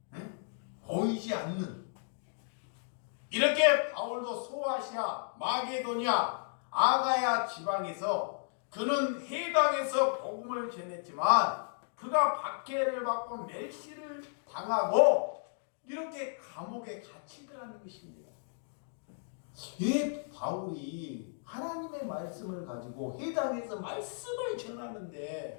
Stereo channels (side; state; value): right; silent; digital silence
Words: 응? 보이지 않는. 이렇게 바울도 소아시아, 마게도냐, 아가야 지방에서 그는 해당에서 복음을 전했지만 그가 박해를 받고 멸시를 당하고 이렇게 감옥에 갇히더라는 것입니다. 이 바울이 하나님의 말씀을 가지고 해당에서 말씀을